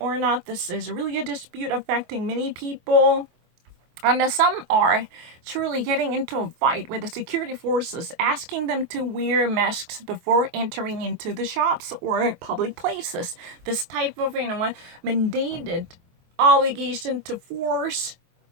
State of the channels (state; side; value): late; left; 23 ms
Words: not. This is really a dispute affecting many people. And some are truly getting into a fight with the security forces, asking them to wear masks before entering into the shops or public places. This type of mandated obligation to force